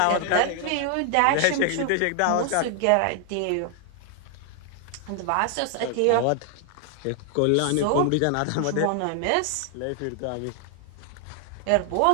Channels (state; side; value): different; both; correlation 0.00